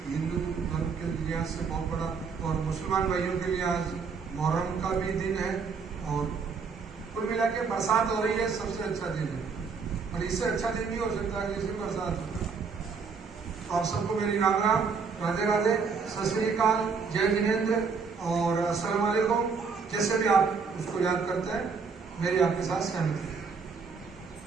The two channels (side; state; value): left; quieter; 5.3 dB